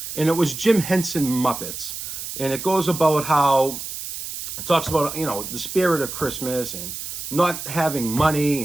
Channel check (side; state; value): right; noise; hiss, 8 dB below the sound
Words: and it was Jim Henson Muppets. And it goes about how, it talks about, you know, the spirit of Christmas and not having